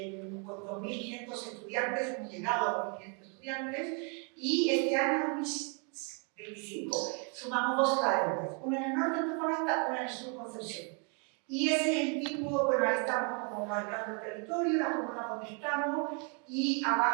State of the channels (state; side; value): quieter; left; 37.0 dB